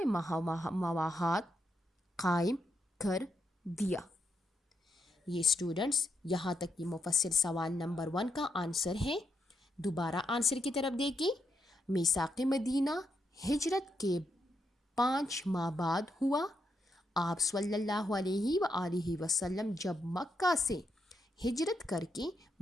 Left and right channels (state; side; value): normal; both; correlation 0.81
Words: مواہات قائم کر دیا۔ یہ اسٹوڈنٹس یہاں تک یہ مفصل سوال نمبر 1 کا آنسر ہے۔ دوبارہ آنسر کی طرف دیکھیں، میثاق مدینہ ہجرت کے 5 ماہ بعد ہوا۔ آپ صلی اللہ علیہ وآلہ وسلم جب مکہ سے ہجرت کر کے